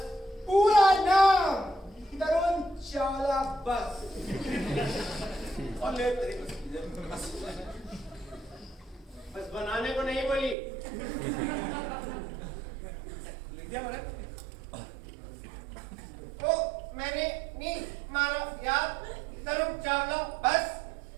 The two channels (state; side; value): drops out; left; at 10.6 s